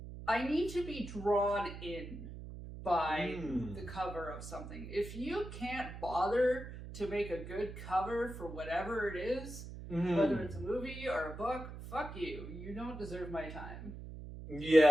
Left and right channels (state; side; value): noise; right; hum, 11 dB below the sound